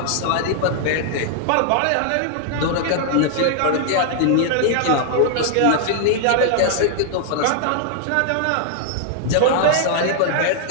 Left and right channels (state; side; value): different; both; correlation 0.00